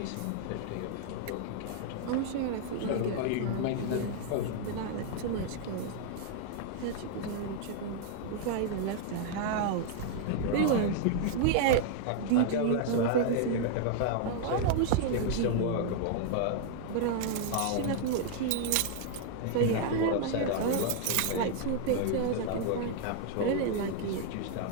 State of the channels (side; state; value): both; different; correlation 0.00